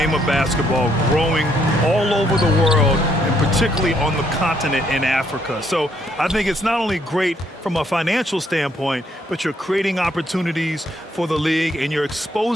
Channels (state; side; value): normal; both; correlation 0.71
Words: of basketball growing all over the world, and particularly on the continent in Africa. So I think it's not only great from a financial standpoint, but you're creating opportunities for the league and you're